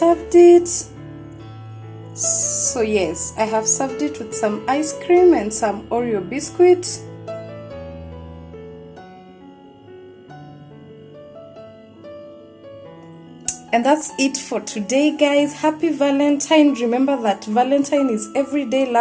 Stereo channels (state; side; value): identical; both; correlation 1.00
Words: it. So yes, I have served it with some ice cream and some Oreo biscuit. And that's it for today, guys. Happy Valentine. Remember that Valentine is every day.